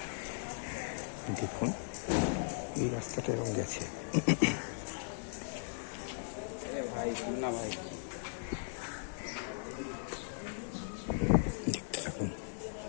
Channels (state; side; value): silent; right; digital silence